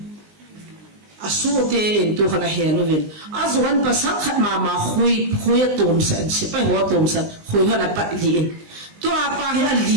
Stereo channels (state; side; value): late; left; 19 ms